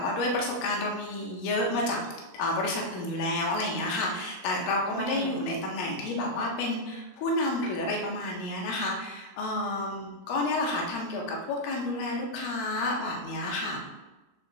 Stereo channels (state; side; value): late; right; 16 ms